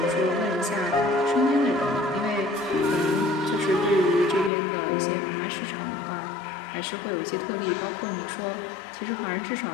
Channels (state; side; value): drops out; right; at 4.5 s